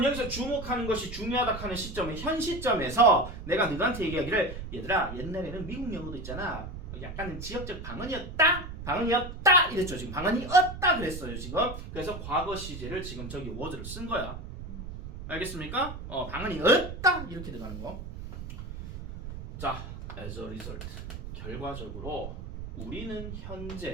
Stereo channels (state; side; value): noise; right; rumble, 9 dB below the sound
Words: 여기서 주목하는 것이 중요하다 하는 시점은 현 시점에서 내가 너한테 얘기하기를 얘들아 옛날에는 미국 영어도 있잖아. 약간 지역적 방언이었다 이랬죠. 지금 방언이었다 그랬어요. 지금. 그래서 과거 시제를 지금 저기 word를 쓴 거야. 알겠습니까? 방언이었다 이렇게 들어가는 거. 자, as a result 결과적으로 우리는